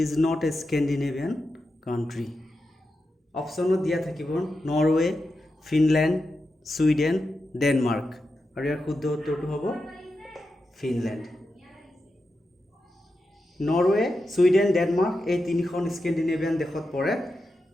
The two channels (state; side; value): normal; both; correlation 0.89